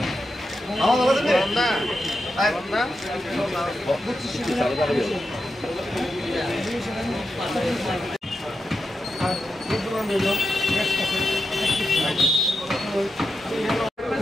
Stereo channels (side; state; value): both; normal; correlation 0.88